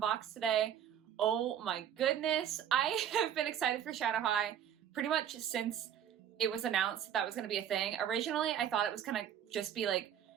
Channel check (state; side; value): quieter; left; 9.6 dB